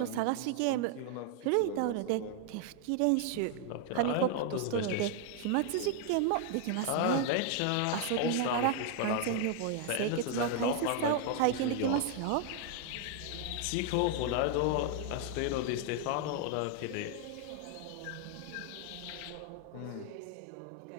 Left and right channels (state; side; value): different; both; correlation 0.00